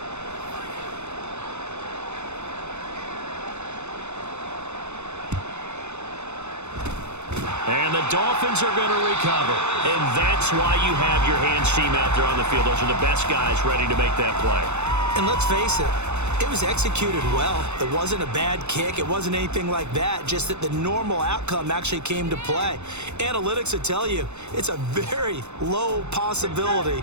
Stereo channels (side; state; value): left; late; 0.82 ms